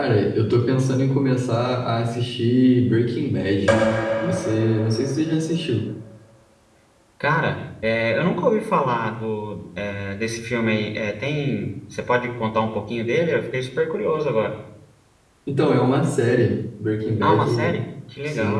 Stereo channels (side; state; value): both; identical; correlation 1.00